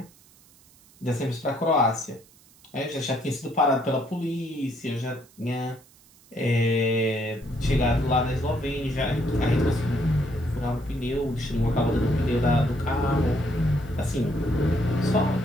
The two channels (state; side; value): noise; right; hiss, 27 dB below the sound